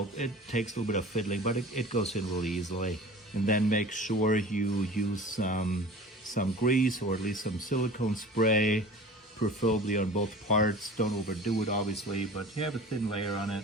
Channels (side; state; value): both; normal; correlation 0.40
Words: it takes a little bit of fiddling, but it goes in really easily. And then make sure you use some grease or at least some silicone spray, preferably on both parts. Don't overdo it, obviously, but you have a thin layer on it.